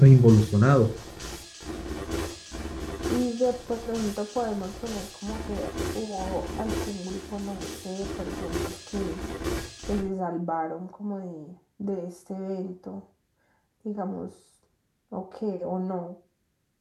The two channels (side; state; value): both; identical; correlation 1.00